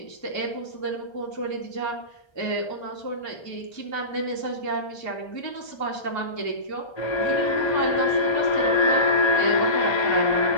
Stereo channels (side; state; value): right; late; 1.3 ms